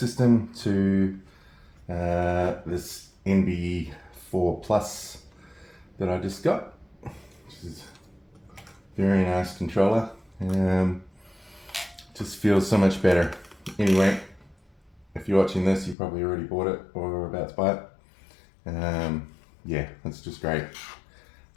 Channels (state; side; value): drops out; right; at 16.0 s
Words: to this NB4 Plus that I just got, which is a very nice controller. Just feels so much better. Anyway, if you're watching this, you probably already bought it or are about to buy it. Yeah, it's just great.